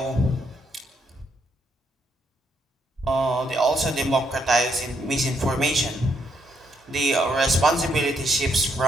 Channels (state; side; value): normal; both; correlation 0.75